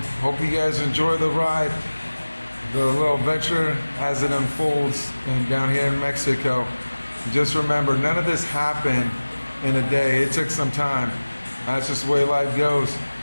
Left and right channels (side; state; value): both; inverted; correlation -1.00